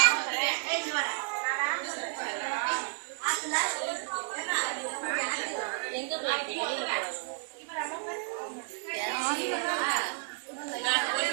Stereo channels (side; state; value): left; silent; digital silence